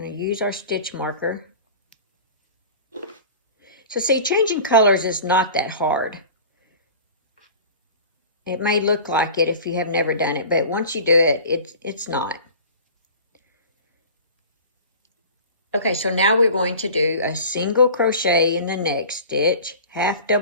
to use our stitch marker. So see, changing colors is not that hard. It may look like it if you have never done it, but once you do it, it's not. Okay, so now we're going to do a single crochet in the next stitch, 1/2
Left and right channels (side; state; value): both; inverted; correlation -0.39